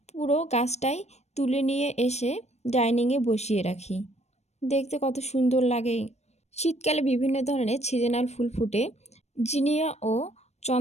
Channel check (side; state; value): right; late; 0.32 ms